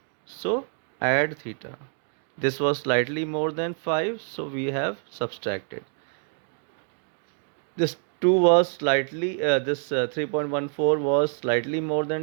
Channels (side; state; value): left; silent; 55 dB below the other